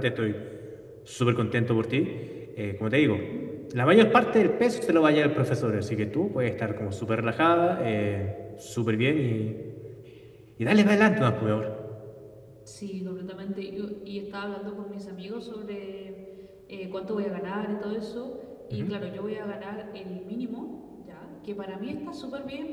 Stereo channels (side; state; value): both; identical; correlation 1.00